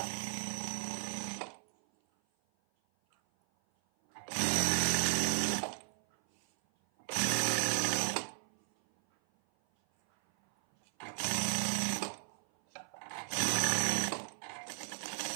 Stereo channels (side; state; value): left; silent; 54 dB below the other